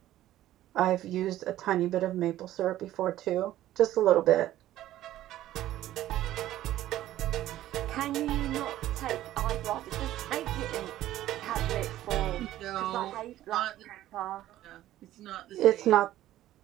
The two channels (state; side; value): quieter; left; 13.9 dB